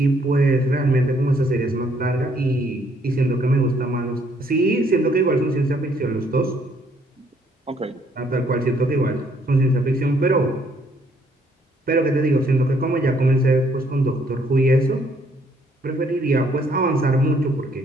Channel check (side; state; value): both; normal; correlation 0.67